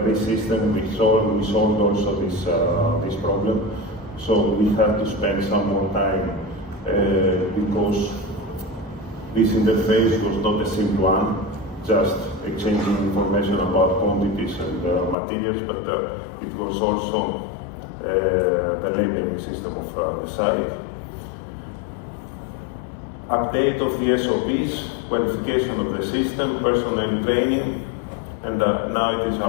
this system we solved also this problem. So we had to spend some more time because this interface was not a simple one, just exchanging information about quantities and materials, but it was also the labeling system of the site. Update of the SOPs, qualification of the system, personnel training, and now it is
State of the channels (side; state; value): right; drops out; at 15.2 s